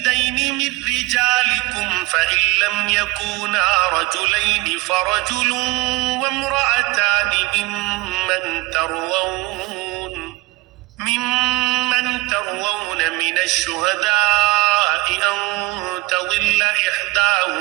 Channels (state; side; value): quieter; left; 20.5 dB